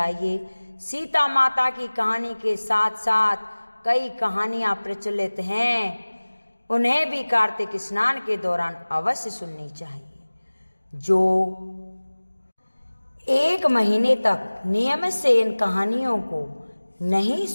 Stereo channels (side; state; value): both; inverted; correlation -1.00